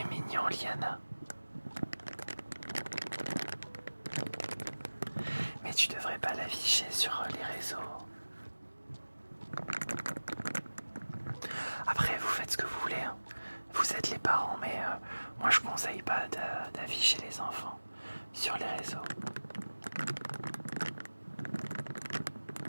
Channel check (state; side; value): inverted; both; correlation -1.00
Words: mignon, Liana. Mais tu devrais pas l'afficher sur les réseaux. Après, vous faites ce que vous voulez. Hein. Vous êtes les parents, mais moi je conseille pas d'afficher les enfants sur les réseaux.